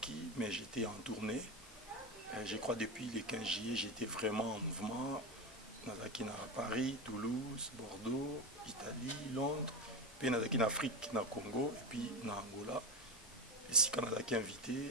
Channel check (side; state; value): both; normal; correlation 0.17